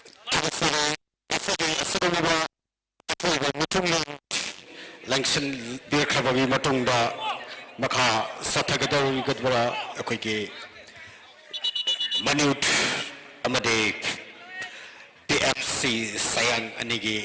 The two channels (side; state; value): both; identical; correlation 1.00